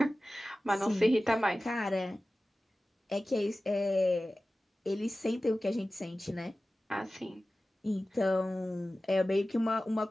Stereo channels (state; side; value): normal; both; correlation 0.96